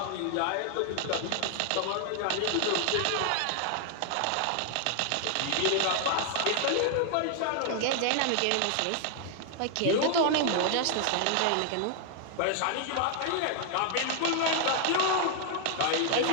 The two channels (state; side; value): different; both; correlation 0.00